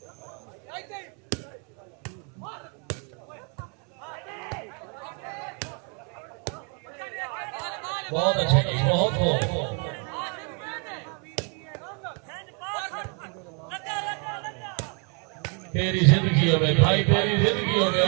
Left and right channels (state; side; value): quieter; left; 37.1 dB